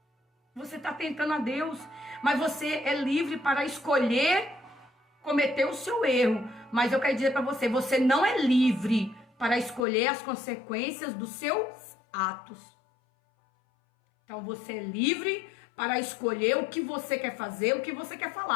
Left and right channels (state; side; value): drops out; right; at 9.9 s